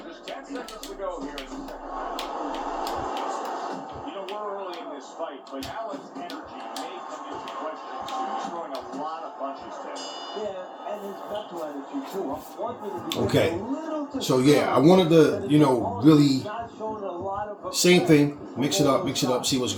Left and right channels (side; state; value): both; identical; correlation 1.00